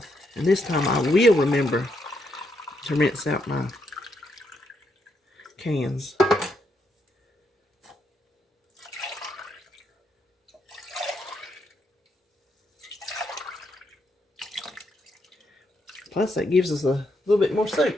And this time I will remember to rinse out my cans. Plus that gives us a little bit more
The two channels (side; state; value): both; normal; correlation 0.78